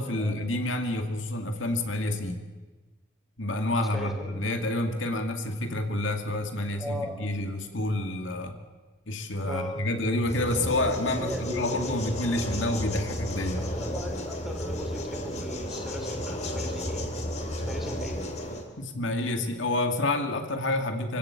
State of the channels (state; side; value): normal; both; correlation 0.40